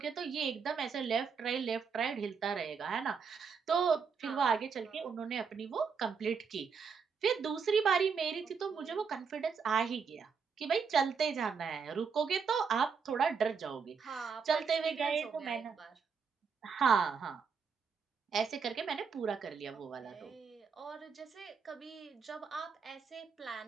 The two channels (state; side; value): quieter; left; 5.8 dB